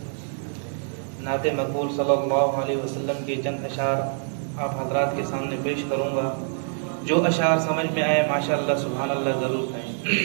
مقبول صلی اللہ علیہ وسلم کے چند اشعار آپ حضرات کے سامنے پیش کروں گا. جو اشعار سمجھ میں آئے ماشاءاللہ سبحان اللہ ضرور کہیں.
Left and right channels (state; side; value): silent; left; digital silence